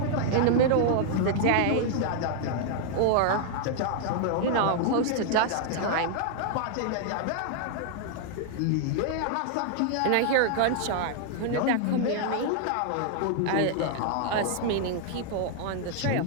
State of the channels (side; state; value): both; different; correlation -0.01